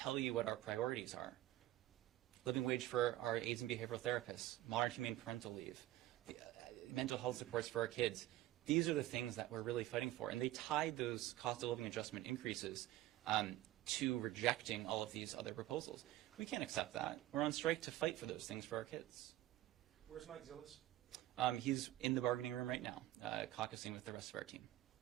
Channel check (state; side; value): quieter; left; 15.3 dB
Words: you what our priorities are. living wage for our aides and behavioral therapists, modern humane parental leave, mental health supports for our kids. These are the things that we're really fighting for. And they tied those cost of living adjustment increases to rejecting all of these other proposals. We can't accept that. We're on strike to fight for those things for our kids. Where's Mike Zillis? He's in the bargaining room right now, caucusing with the rest of our team.